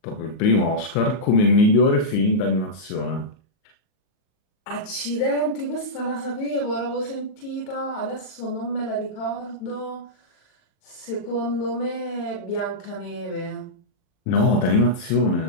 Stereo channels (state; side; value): late; right; 38 ms